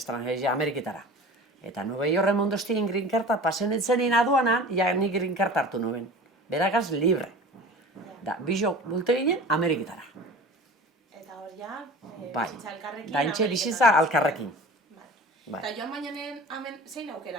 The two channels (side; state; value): both; normal; correlation 0.39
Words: Ameriketara. Eta Nueva York mondoztien Green Carta pasen etzenin aduanan, ja nik Green Carta hartu nuen. Beragaz libre. Da, bizo bulte ginen Ameriketara. Eta hor ja, bizitza alkarrekin. Da, entxe bizitza alkarrekin. Eta joan bainanen hemen zein